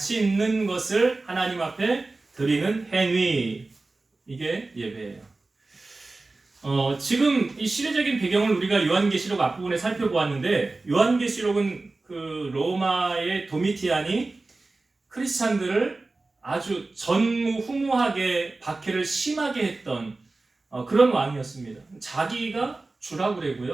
있는 것을 하나님 앞에 드리는 행위, 이게 예배예요. 지금 이 시대적인 배경을 우리가 요한계시록 앞부분에 살펴보았는데, 요한계시록은 그 로마의 도미티안이 크리스찬들을 아주 전무후무하게 박해를 심하게 했던 그런 왕이었습니다. 자기가 주라고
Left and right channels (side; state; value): left; quieter; 3.3 dB